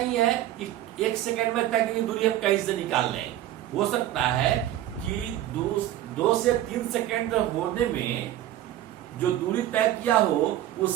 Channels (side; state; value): left; quieter; 13.1 dB